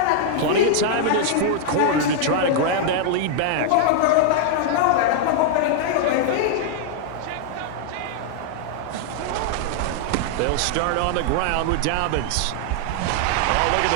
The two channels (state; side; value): different; both; correlation -0.01